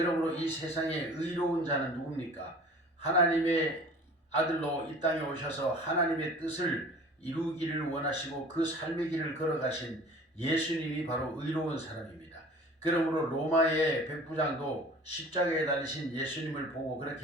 이 세상에 의로운 자는 누굽니까? 하나님의 아들로 이 땅에 오셔서 하나님의 뜻을 이루기를 원하시고 그 삶의 길을 걸어가신 예수님이 바로 의로운 사람입니다. 그러므로 로마의 백부장도 십자가에 달리신 예수님을 보고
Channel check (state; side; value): normal; both; correlation 0.45